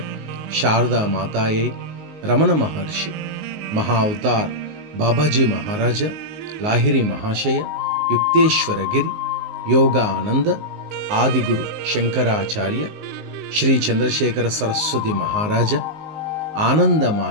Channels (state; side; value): late; left; 19 ms